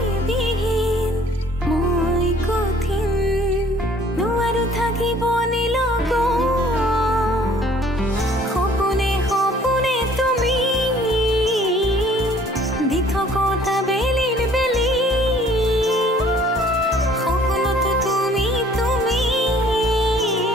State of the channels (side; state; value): both; normal; correlation 0.56